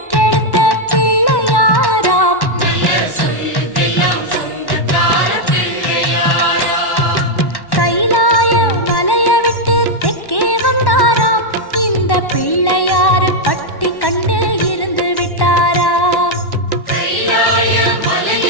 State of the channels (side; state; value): right; late; 1.1 ms